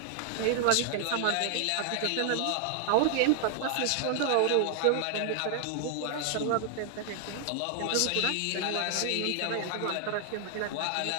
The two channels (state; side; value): different; both; correlation 0.00